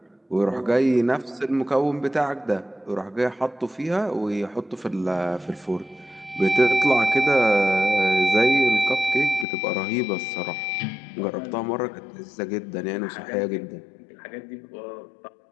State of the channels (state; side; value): drops out; right; at 9.5 s